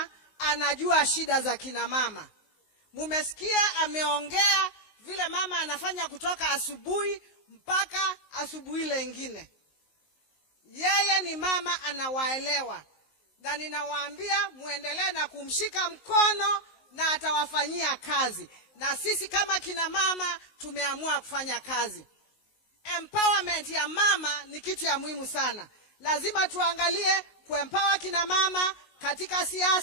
anajua shida za kina mama. Mumesikia ameongea vile mama anafanya kutoka asubuhi mpaka asubuhi lengine. Yeye ni mama anawaelewa. Na ninawaambia muendelee na kumshika mkono na atawafanyia kazi. Na sisi kama kina mama tumeamua kufanya kazi. Empowerment ya mama ni kitu ya muhimu sana. Lazima tuangalie kuempower kina mama katika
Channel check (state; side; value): late; right; 19 ms